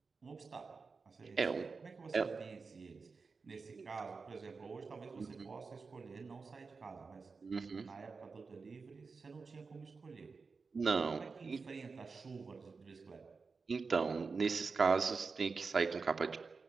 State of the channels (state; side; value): quieter; left; 4.6 dB